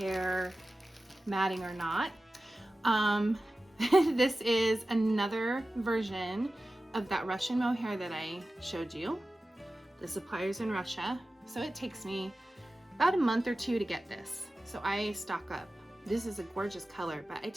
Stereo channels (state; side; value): normal; both; correlation 0.95